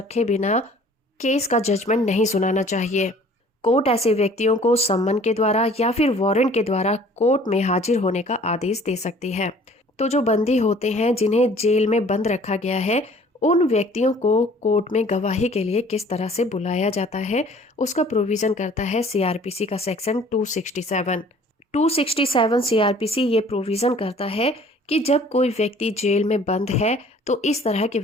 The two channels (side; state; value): both; normal; correlation 0.52